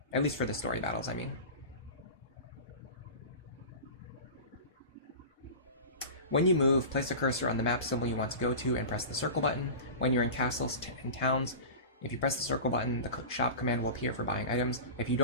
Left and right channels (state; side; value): inverted; both; correlation -0.31